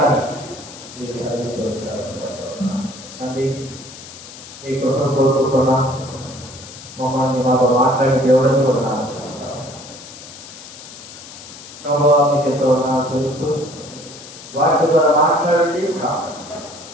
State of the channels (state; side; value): noise; left; hiss, 16 dB below the sound